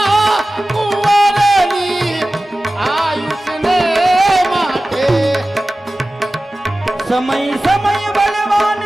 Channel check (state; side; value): normal; both; correlation 0.96